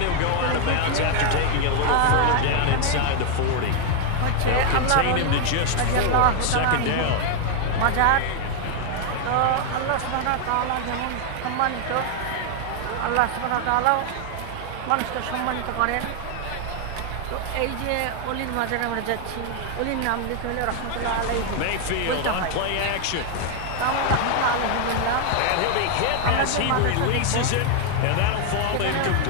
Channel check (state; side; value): different; both; correlation 0.01